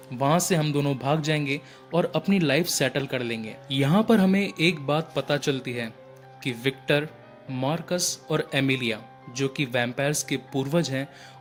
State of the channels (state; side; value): identical; both; correlation 1.00